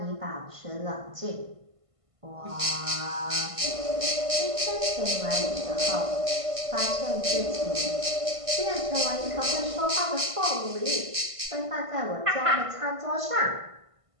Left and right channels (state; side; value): late; left; 1.5 ms